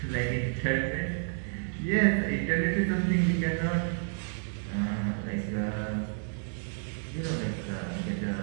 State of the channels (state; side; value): silent; left; 58 dB below the other